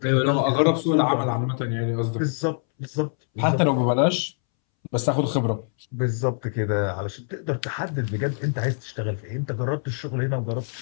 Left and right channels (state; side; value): silent; right; 62 dB below the other